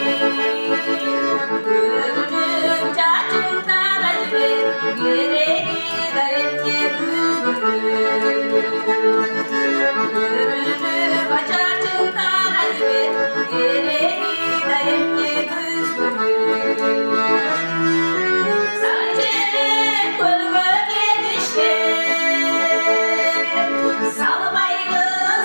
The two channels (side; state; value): both; inverted; correlation -1.00